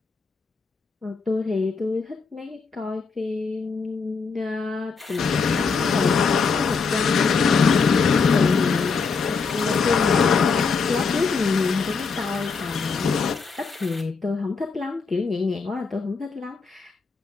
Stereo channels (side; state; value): right; quieter; 5.0 dB